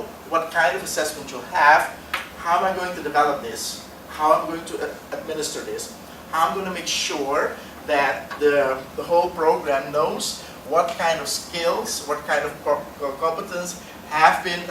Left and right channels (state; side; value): identical; both; correlation 1.00